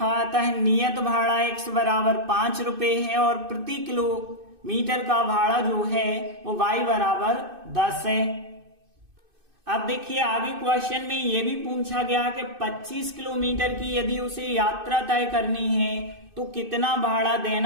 आता है नियत भाड़ा x बराबर 5 रुपए है और प्रति किलोमीटर का भाड़ा जो है वो y बराबर 10 है। अब देखिए आगे क्वेश्चन में ये भी पूछा गया कि 25 किलोमीटर की यदि उसे यात्रा तय करनी है तो कितना भाड़ा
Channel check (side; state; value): left; late; 2.6 ms